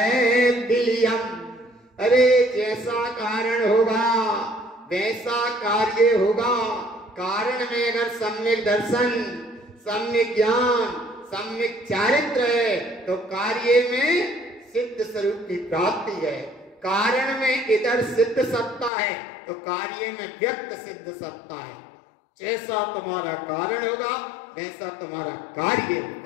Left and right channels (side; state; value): right; drops out; at 18.9 s